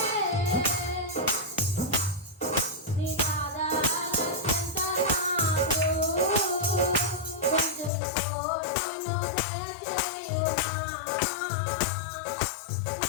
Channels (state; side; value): drops out; right; at 7.9 s